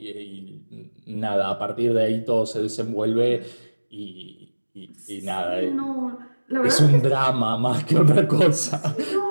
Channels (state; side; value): inverted; both; correlation -1.00